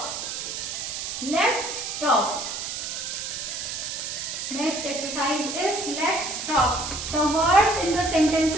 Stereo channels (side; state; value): right; noise; hiss, 5 dB below the sound